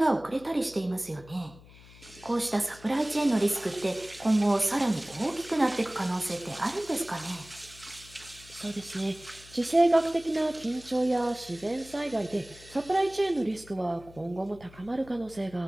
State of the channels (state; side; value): noise; left; hum, 21 dB below the sound